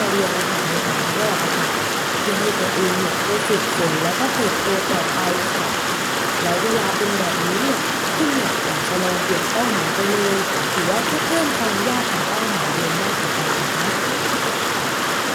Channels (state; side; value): identical; both; correlation 1.00